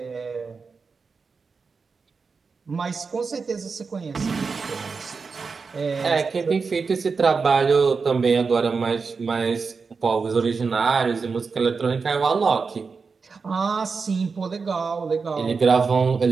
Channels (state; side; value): quieter; left; 4.9 dB